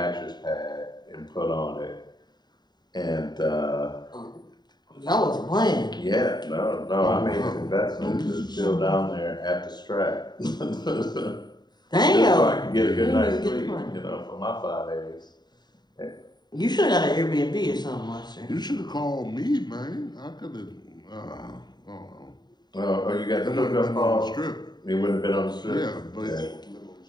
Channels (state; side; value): late; right; 0.20 ms